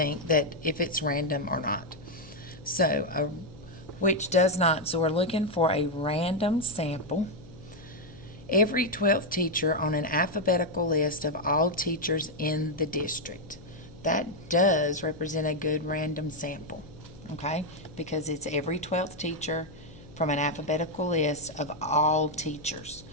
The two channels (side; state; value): left; noise; hum, 20 dB below the sound